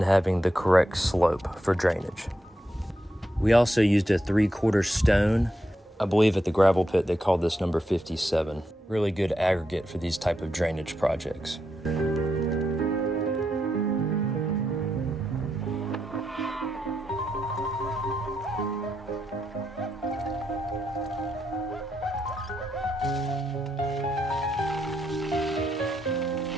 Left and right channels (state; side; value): normal; both; correlation 0.83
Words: having the correct slope for drainage. We also used a 3/4 stone. I believe at the gravel pit they called this number 57. Really good aggregate for these type of drainage projects.